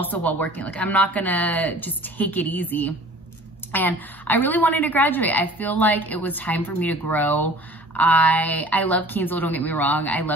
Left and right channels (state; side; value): normal; both; correlation 0.47